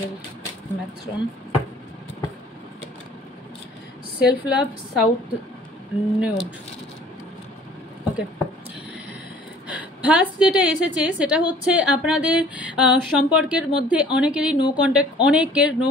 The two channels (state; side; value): normal; both; correlation 0.52